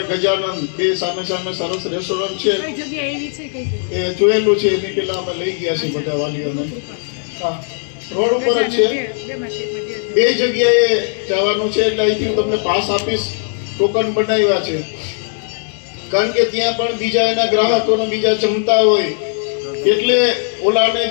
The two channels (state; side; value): silent; right; 68 dB below the other